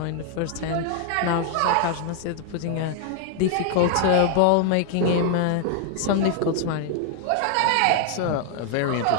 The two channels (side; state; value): both; different; correlation 0.00